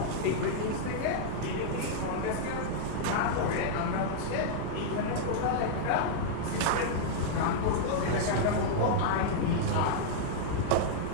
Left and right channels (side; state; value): both; different; correlation -0.02